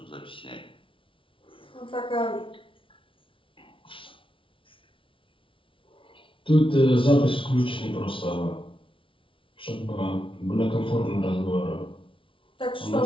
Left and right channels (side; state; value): right; late; 0.25 ms